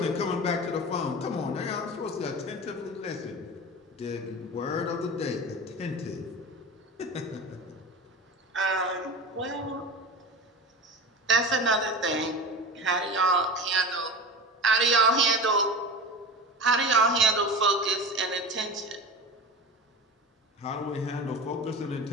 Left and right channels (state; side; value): normal; both; correlation 0.30